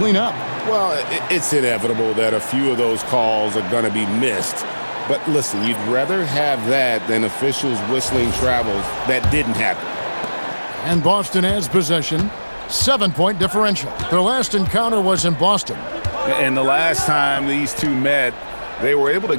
up? Well, it's inevitable that a few of those calls are going to be missed. But listen, you'd rather have that than officials whistling travels that didn't happen. And Boston has possession. 7-point differential. Their last encounter was in Boston. And the last time these two met, they were able to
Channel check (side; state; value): both; inverted; correlation -1.00